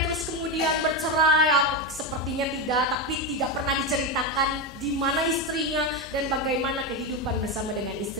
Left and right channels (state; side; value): normal; both; correlation 0.12